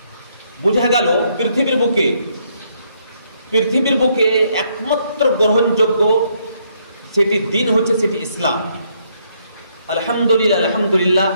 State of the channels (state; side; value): inverted; both; correlation -0.72